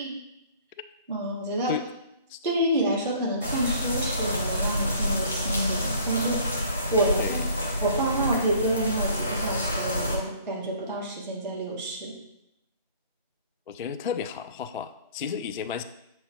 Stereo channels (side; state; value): both; inverted; correlation -0.54